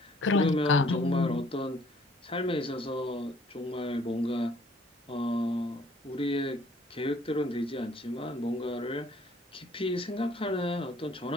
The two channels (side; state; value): both; normal; correlation 0.59